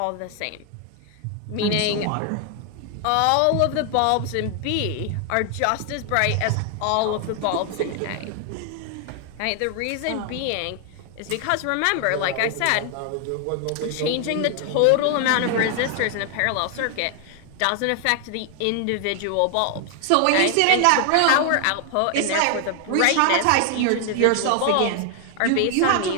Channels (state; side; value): different; both; correlation 0.00